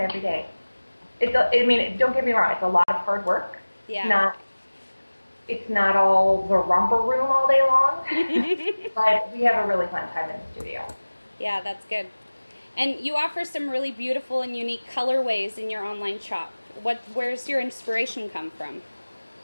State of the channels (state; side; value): inverted; both; correlation -1.00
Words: day. Don't get me wrong, it's a lot of hard work. Yeah. It's not all the romper room all day long, but we have a really fun time in the studio. Yeah, that's good. And you offer some really beautiful and unique colorways in your online shop. Where's your inspiration come from?